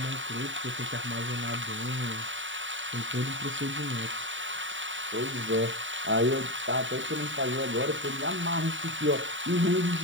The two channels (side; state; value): left; late; 0.55 ms